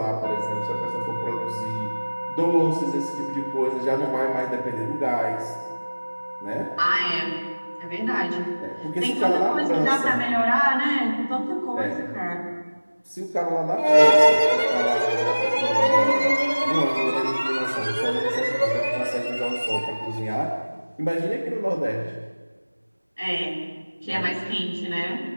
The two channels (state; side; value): inverted; both; correlation -1.00